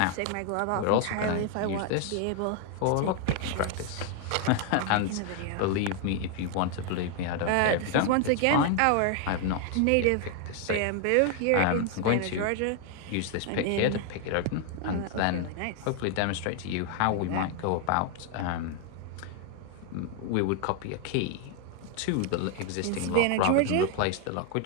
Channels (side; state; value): both; different; correlation 0.00